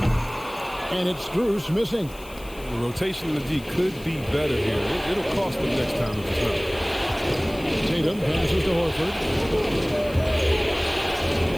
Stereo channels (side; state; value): left; noise; hiss, 20 dB below the sound